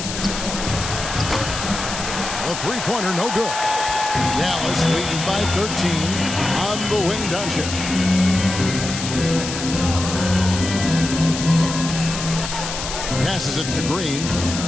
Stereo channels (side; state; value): left; noise; hiss, 6 dB below the sound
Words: A three-pointer, no good. Dallas leading by 13 on the wing, Doncic. Passes it to Green.